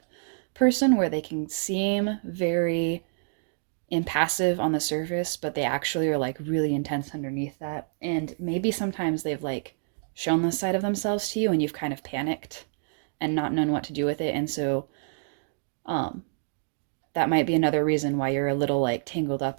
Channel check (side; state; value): left; silent; digital silence